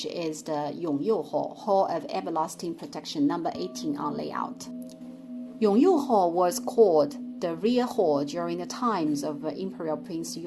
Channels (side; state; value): both; identical; correlation 1.00